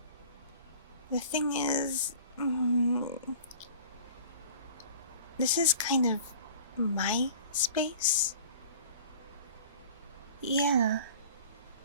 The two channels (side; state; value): both; inverted; correlation -0.45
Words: the thing is, this is kind of my space. Yeah.